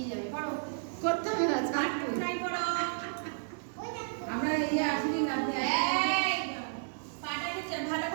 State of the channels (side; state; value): left; silent; 56 dB below the other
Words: যাবে, করো। করতে হবে না ছাড় তুই। বাটারফ্লাই করো। আমরা ইয়ে আসলি না এই, পাটাকে ভালো